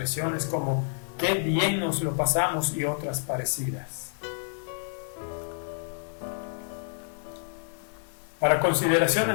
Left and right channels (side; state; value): right; silent; digital silence